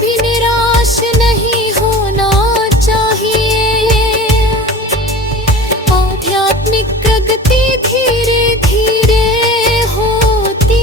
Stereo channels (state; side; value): normal; both; correlation 0.37